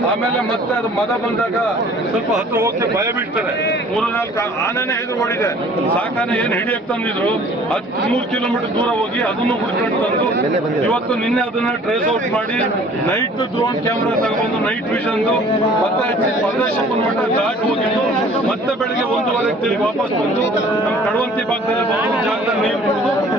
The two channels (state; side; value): normal; both; correlation 0.52